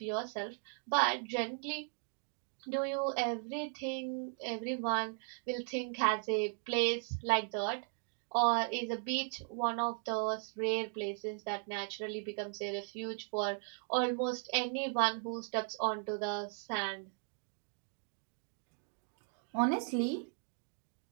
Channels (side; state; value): left; silent; 53 dB below the other